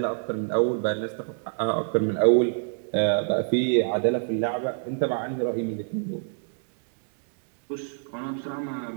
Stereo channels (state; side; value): silent; left; 60 dB below the other